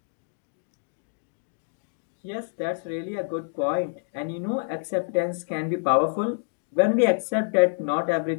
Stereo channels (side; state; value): right; silent; digital silence